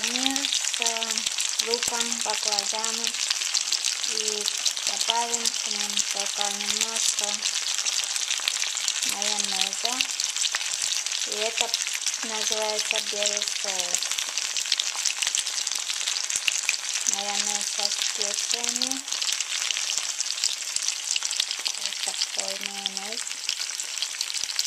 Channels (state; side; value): identical; both; correlation 1.00